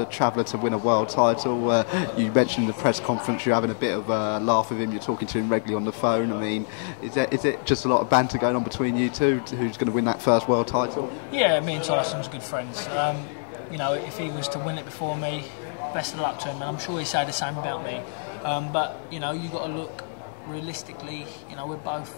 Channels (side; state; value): right; silent; digital silence